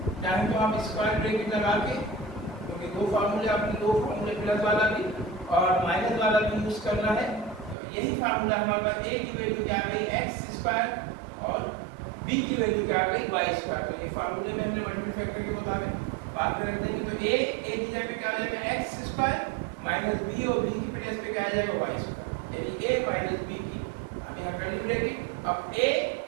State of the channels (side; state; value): left; drops out; at 7.8 s